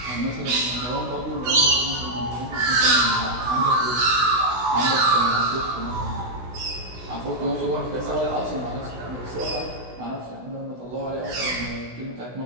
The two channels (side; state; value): left; late; 16 ms